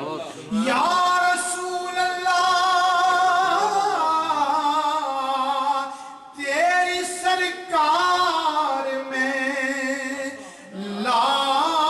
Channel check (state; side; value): identical; both; correlation 1.00